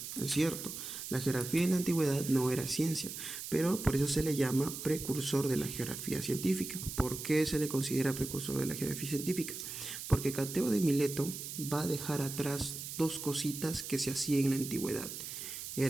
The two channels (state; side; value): noise; right; hiss, 8 dB below the sound